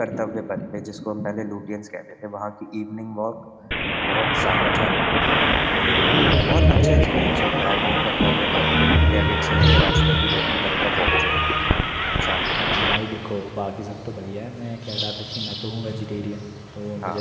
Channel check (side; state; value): both; identical; correlation 1.00